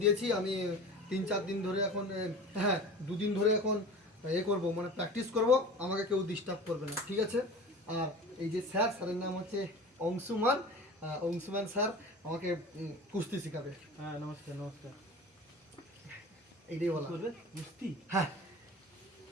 দিয়েছি। আমি 3-4 দিন ধরে এখন হ্যাঁ 2 দিন ধরে এখন করব মানে প্র্যাকটিস করব, আমাকে কেউ ডিস্টার্ব করবে না, ঠিক আছে? আর এই যে স্যারের নাম হচ্ছে অংশুমান। অংশুমান স্যার আমাকে কুস্তি শেখাবে। হ্যাঁ নমস্কার নমস্কার। এইটাই বলা করবে কুস্তি? হ্যাঁ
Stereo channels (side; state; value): both; normal; correlation 0.36